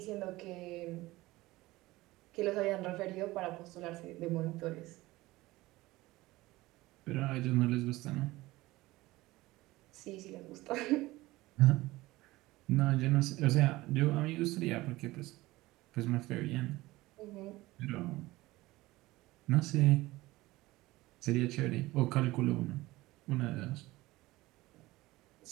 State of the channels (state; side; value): quieter; left; 19.1 dB